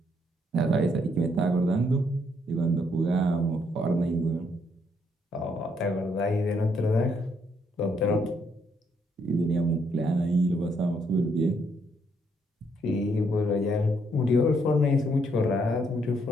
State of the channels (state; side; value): normal; both; correlation 0.72